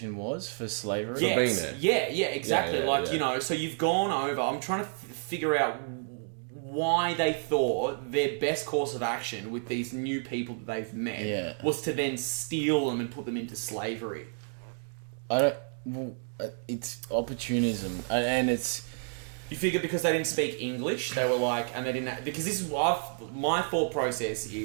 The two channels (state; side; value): silent; left; 58 dB below the other